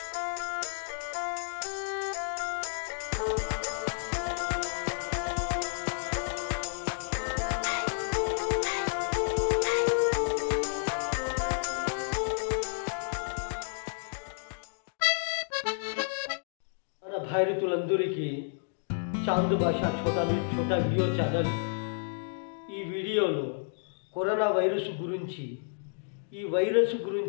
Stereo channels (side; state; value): right; silent; digital silence